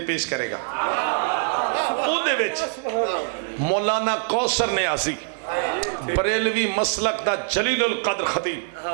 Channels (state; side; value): silent; left; digital silence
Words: پیش کرے گا او دے وچ مولانا کوثر نیازی بریلوی مسلک دا جلیل القدر خطیب